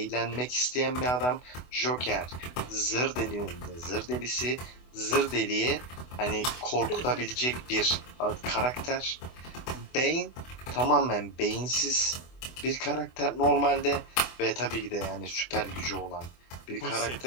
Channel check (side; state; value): right; late; 24 ms